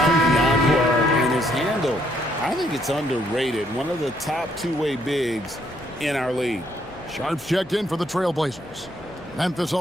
out beyond and his handle. I think it's underrated. One of the top two-way bigs in our league. Sharps checked in for the Trailblazers. Memphis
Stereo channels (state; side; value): noise; left; hum, 23 dB below the sound